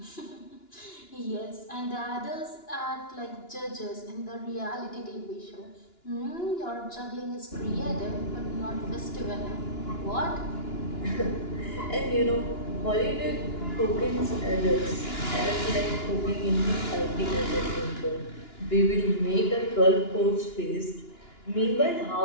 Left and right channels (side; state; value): right; late; 2.9 ms